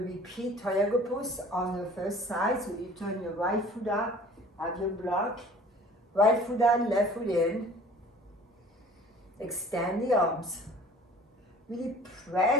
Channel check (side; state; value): both; normal; correlation 0.48